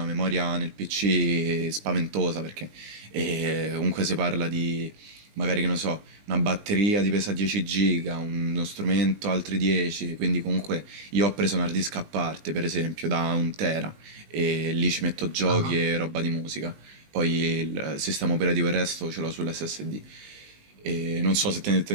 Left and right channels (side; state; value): left; late; 20 ms